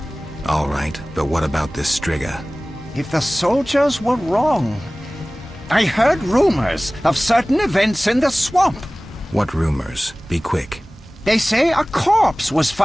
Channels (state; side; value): normal; both; correlation 0.98